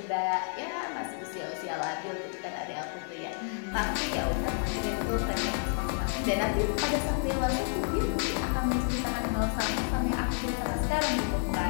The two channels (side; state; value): right; silent; digital silence